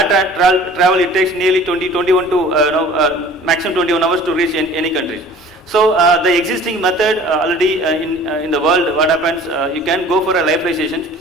travel it takes nearly 21 to maximum 21 hours to reach any countries. So the existing method already in the world, what happens, you can go for a lyophilization,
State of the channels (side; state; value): both; normal; correlation 0.47